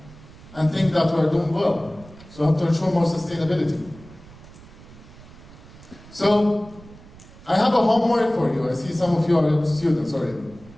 and think that we're doing well. So we have to ensure more sustainability. So I have a homework for you. I see some of you are students already.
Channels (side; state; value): right; noise; rumble, 21 dB below the sound